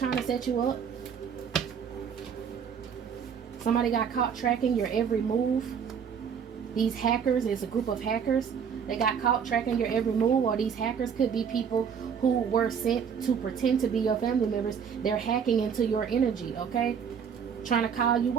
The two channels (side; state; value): left; quieter; 7.1 dB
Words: to set you up. Somebody got caught tracking your every move. These hackers, it's a group of hackers. They got caught tracking your every move, or these hackers could be people who were sent to pretend to be your family members. They're hacking into your energy. Okay, trying to call you.